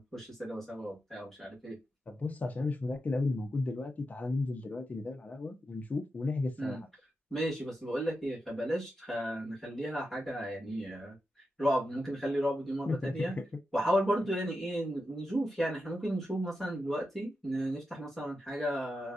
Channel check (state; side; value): normal; both; correlation 0.88